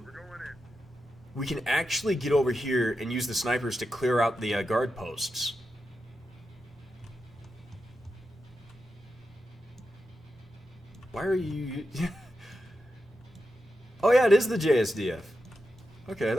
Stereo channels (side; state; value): both; normal; correlation 0.89